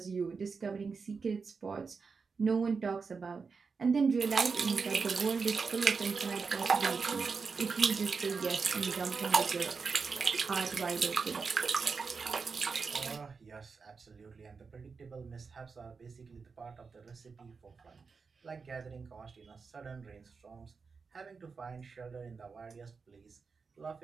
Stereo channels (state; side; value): quieter; left; 5.0 dB